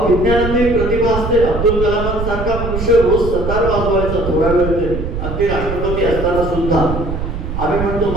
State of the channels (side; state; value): right; noise; rumble, 5 dB below the sound